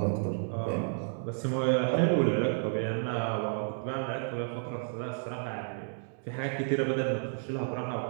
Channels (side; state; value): left; silent; digital silence